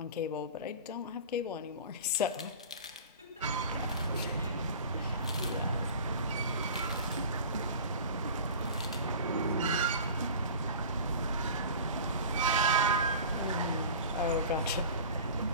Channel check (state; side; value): inverted; both; correlation -0.37